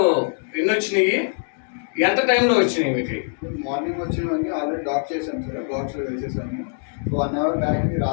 ఎన్ని వచ్చినాయి, ఎంత టైంలో వచ్చినాయి? మీకు మార్నింగ్ వచ్చినవన్నీ ఆల్రెడీ డాక్ చేశాను సార్, బాక్స్లో వేసేసాము. 1 అవర్ బ్యాక్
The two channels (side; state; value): right; silent; 64 dB below the other